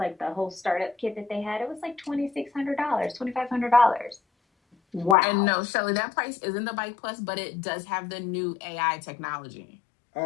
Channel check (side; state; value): right; drops out; at 5.2 s